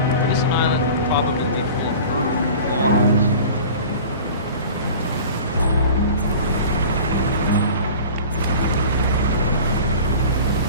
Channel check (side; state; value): both; inverted; correlation -0.40